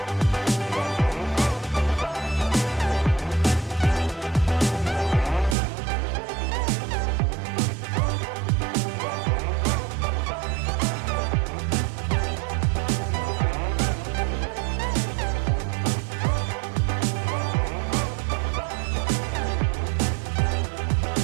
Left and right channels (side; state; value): left; drops out; at 5.6 s